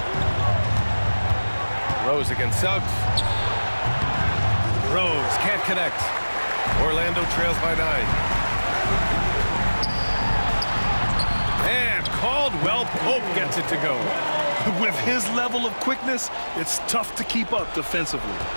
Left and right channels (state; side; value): inverted; both; correlation -1.00